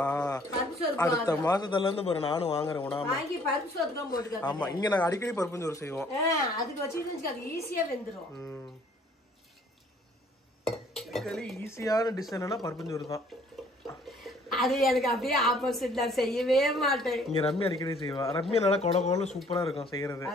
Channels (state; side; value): normal; both; correlation 0.59